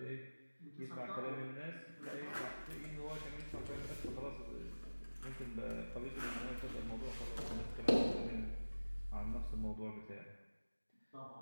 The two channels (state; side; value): inverted; both; correlation -1.00